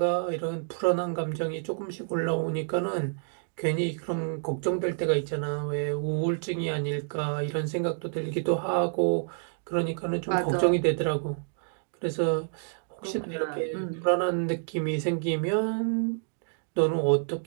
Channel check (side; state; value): left; silent; digital silence